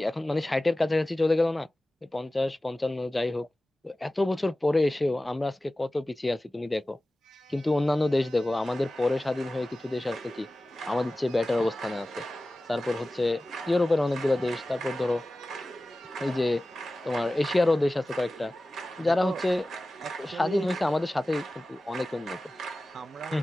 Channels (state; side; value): normal; both; correlation 0.96